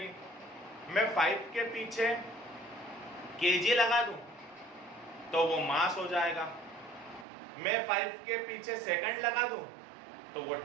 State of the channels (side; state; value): left; drops out; at 7.2 s